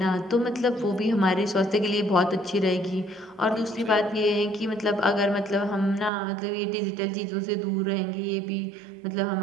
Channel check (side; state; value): left; drops out; at 6.1 s